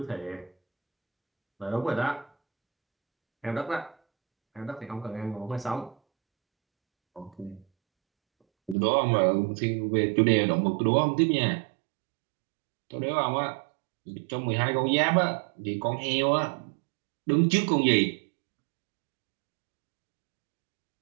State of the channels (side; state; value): left; drops out; at 8.8 s